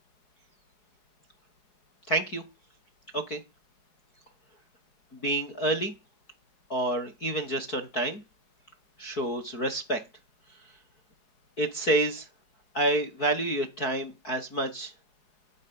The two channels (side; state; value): right; late; 4.5 ms